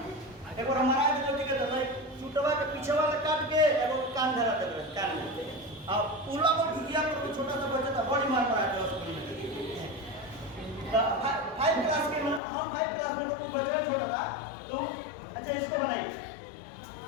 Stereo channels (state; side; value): drops out; right; at 12.4 s